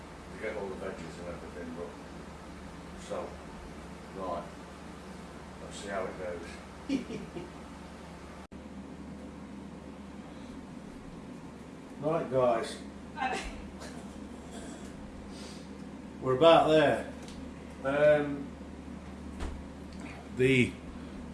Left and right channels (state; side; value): identical; both; correlation 1.00